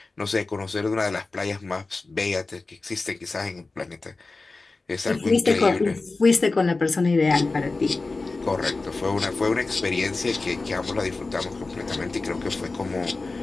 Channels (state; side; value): quieter; right; 3.6 dB